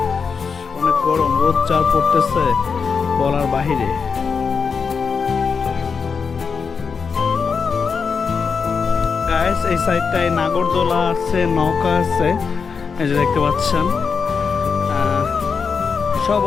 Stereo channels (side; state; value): right; quieter; 5.6 dB